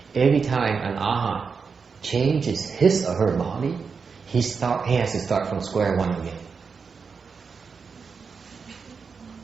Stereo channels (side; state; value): left; quieter; 5.4 dB